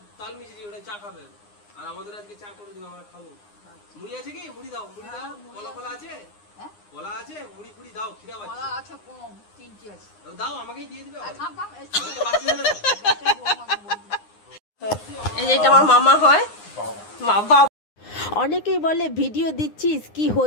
আর আমাদের আজকে চা করে দিও, আমরা খাবো। মুড়ি আছে কি? মুড়ি দাও, মুড়ি দাও। কলা কলা আছে? কলা আছে? মুড়ি ফুড়ি দাও, খিদা পাচ্ছে। কলা আছে কম, 3টি আছে। দাও, আমাকেই দিয়ে দিবে। এই যে এটা আমার মামা হয়। বাবা অনেকেই বলে ভিডিও দিচ্ছিস কি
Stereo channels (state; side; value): late; right; 9.7 ms